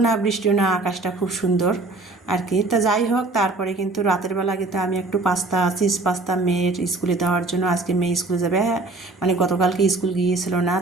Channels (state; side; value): quieter; left; 3.2 dB